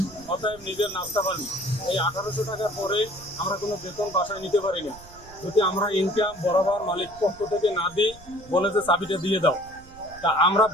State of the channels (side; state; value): right; noise; rumble, 21 dB below the sound